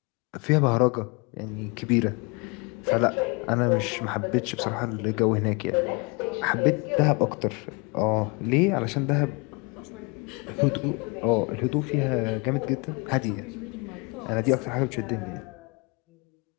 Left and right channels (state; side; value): quieter; right; 29.8 dB